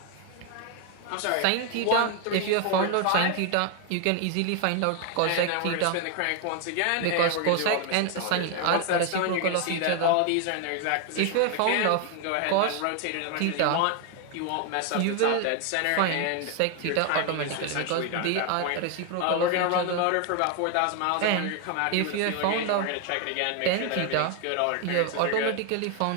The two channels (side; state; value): both; different; correlation 0.00